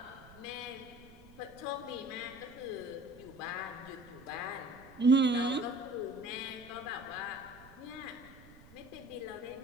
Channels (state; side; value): noise; right; rumble, 21 dB below the sound